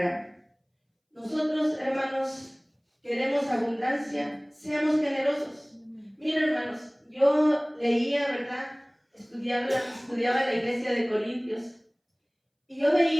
Nosotros, hermanos, queremos abundancia, seamos generosos. Miren, hermanos, yo leía, ¿verdad?, estudiaba la iglesia de Corintios, y yo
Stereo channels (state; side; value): identical; both; correlation 1.00